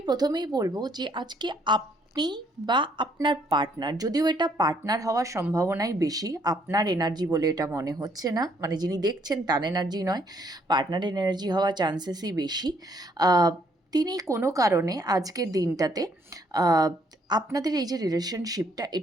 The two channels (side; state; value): both; normal; correlation 0.67